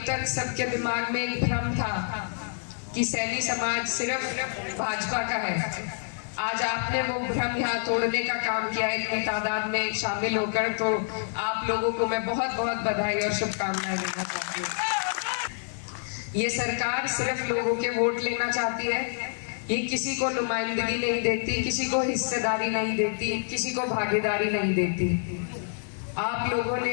तक सबके दिमाग में एक भ्रम था कि सैनी समाज सिर्फ भाजपा का है। आज आपने वो भ्रम यहाँ तोड़ने का काम किया है इतनी तादाद में शामिल होकर, तो आप लोगों को मैं बहुत बहुत बधाई और शुभकामनाएं देना चाहती हूँ। ये सरकार सिर्फ लोगों के वोट लेना चाहती है, ये किसी को नुमाइंदगी नहीं देती, किसी को हिस्सेदारी नहीं देती, किसी को भागीदारी नहीं देती। आप लोगों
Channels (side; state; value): right; silent; 60 dB below the other